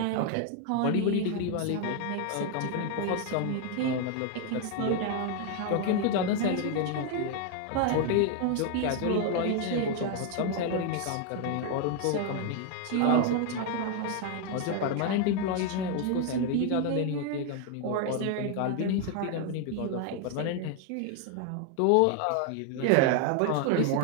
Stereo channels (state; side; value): different; both; correlation 0.01